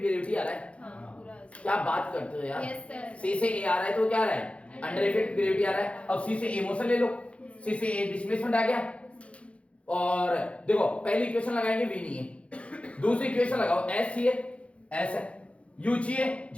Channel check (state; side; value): late; right; 0.062 ms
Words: आ रहा है। क्या बात करते हो यार, C से A आ रहा है तो क्या आ रहा है अंडर इफेक्ट ग्रेविटी आ रहा है। अब C से A मोशन ले लो, C से A डिस्प्लेसमेंट आ गया। और देखो पहली इक्वेशन लगाएंगे V नहीं है, दूसरी इक्वेशन लगाओ S चाहिए, S है, U चाहिए